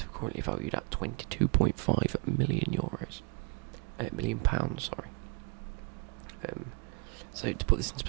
currently valued at €22.5 million pounds. Sorry. So to put this into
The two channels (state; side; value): quieter; left; 31.4 dB